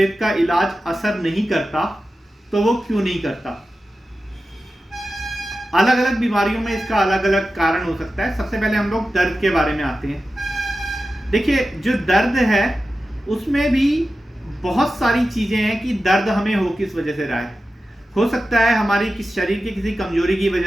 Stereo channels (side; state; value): both; normal; correlation 0.93